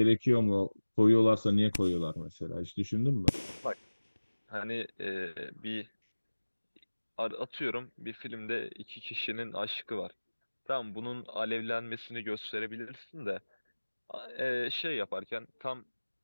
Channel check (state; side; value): inverted; both; correlation -1.00